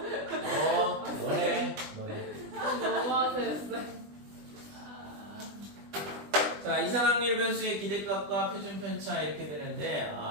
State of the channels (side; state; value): left; late; 20 ms